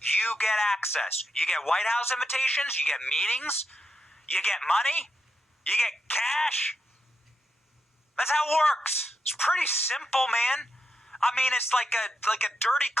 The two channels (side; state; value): both; normal; correlation 0.84